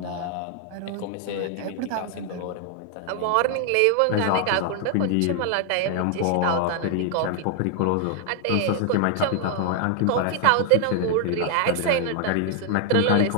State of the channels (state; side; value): different; both; correlation 0.00